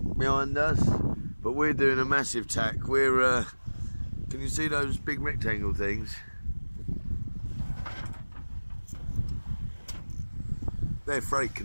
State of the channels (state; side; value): inverted; both; correlation -1.00